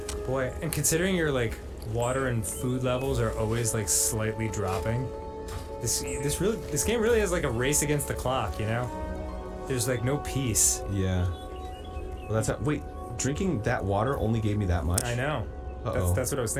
Boy, and considering your like water and food levels are always like slightly dropping, this game really is like a race against the clock, you know? There's like no peace. Yeah. Well, that's how, wait, drinking that water only gave me that much? I know. Uh-oh. That's what I was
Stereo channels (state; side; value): identical; both; correlation 1.00